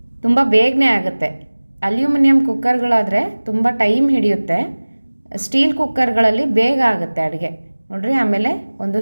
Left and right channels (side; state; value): both; inverted; correlation -1.00